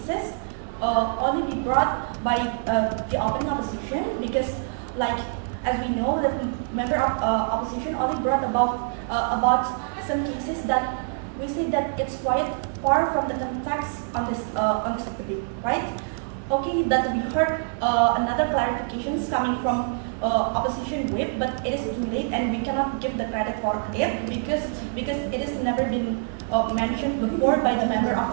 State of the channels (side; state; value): left; silent; digital silence